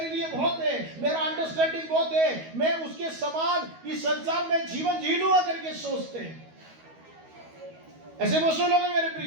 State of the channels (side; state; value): left; late; 12 ms